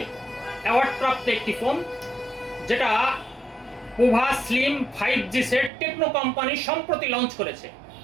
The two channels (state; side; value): drops out; left; at 5.7 s